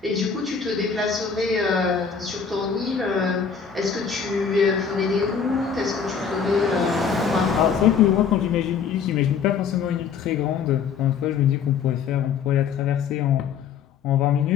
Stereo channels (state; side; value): quieter; right; 6.6 dB